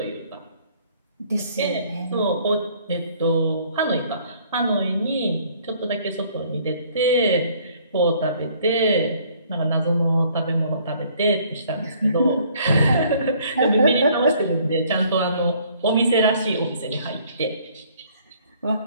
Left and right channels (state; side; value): inverted; both; correlation -0.60